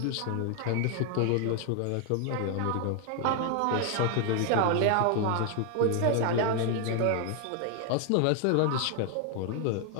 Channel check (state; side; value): different; both; correlation 0.00